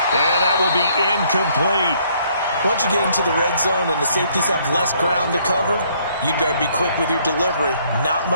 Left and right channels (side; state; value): both; inverted; correlation -0.65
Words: And that will be incomplete. Once you get into the red zone and the safeties have less ground to cover, you'd better be quick with your delivery. Not